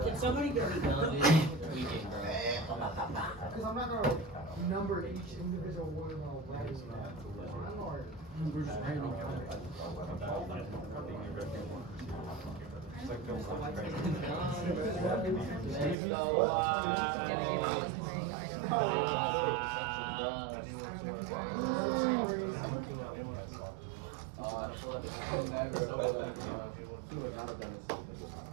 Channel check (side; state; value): left; drops out; at 16.0 s